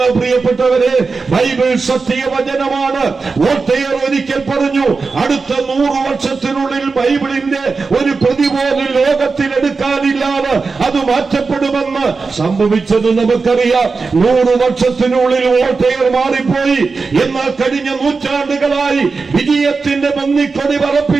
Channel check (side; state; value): left; quieter; 4.4 dB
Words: പ്രിയപ്പെട്ടവരെ, ബൈബിൾ സത്യവചനമാണ്. വോൾട്ടയർ ഒരിക്കൽ പറഞ്ഞു, അടുത്ത 100 വർഷത്തിനുള്ളിൽ ബൈബിളിന്റെ ഒരു പ്രതി പോലും ലോകത്തിൽ എടുക്കാനില്ലാതെ അത് മാറ്റപ്പെടുമെന്ന്. സംഭവിച്ചത് നമുക്കറിയാം. 100 വർഷത്തിനുള്ളിൽ വോൾട്ടയർ മാറിപ്പോയി. എന്നാൽ കഴിഞ്ഞ നൂറ്റാണ്ടുകളായി വിജയത്തിന്റെ മന്നിക്കൊടി